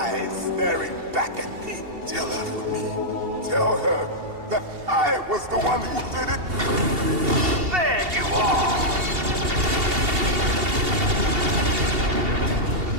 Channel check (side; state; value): left; late; 2.7 ms